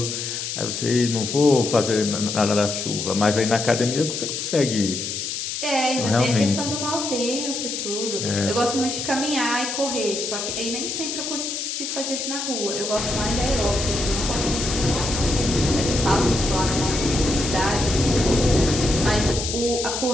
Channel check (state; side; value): noise; left; hiss, 4 dB below the sound